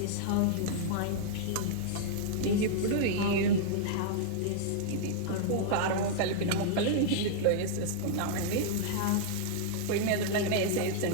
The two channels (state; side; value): different; both; correlation -0.01